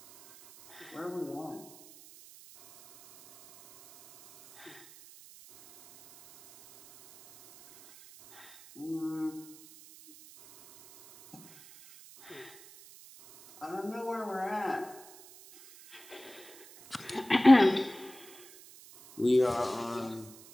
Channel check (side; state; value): right; noise; hiss, 21 dB below the sound